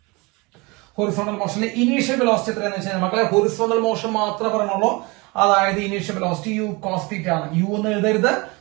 ഹൊറിസോണ്ടൽ മോഷനിലെ ഇനീഷ്യൽ വെലോസിറ്റി എത്രയാണെന്ന് വെച്ചാൽ മക്കളെ ഹൊറിസോണ്ടൽ മോഷൻ മാത്രമേ പറഞ്ഞുള്ളൂ. അതായത് initial velocity u cos theta ആണ്. യു എന്ന് എഴുതരുത്,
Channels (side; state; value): left; quieter; 26.0 dB